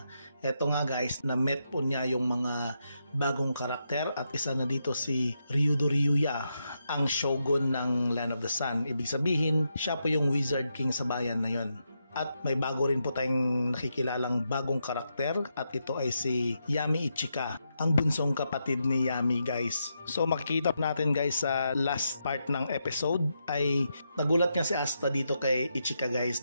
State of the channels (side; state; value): both; inverted; correlation -0.83